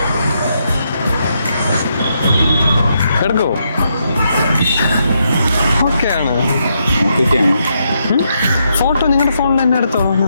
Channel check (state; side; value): inverted; both; correlation -0.79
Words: എടുക്കോ? ഓക്കെ ആണ്. ഫോട്ടോ നിങ്ങളുടെ ഫോണിൽ തന്നെ എടുത്തോ.